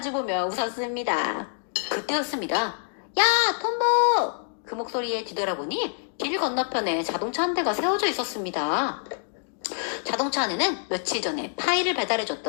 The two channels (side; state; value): right; silent; digital silence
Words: 웃었습니다. 그때였습니다. 야, 톰보! 그 목소리에 뒤돌아보니 길 건너편에 자동차 한 대가 세워져 있었습니다. 자동차 안에는 며칠 전에 파이를